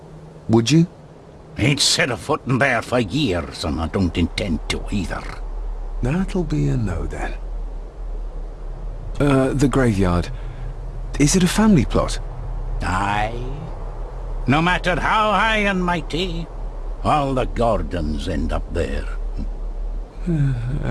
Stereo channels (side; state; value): both; identical; correlation 1.00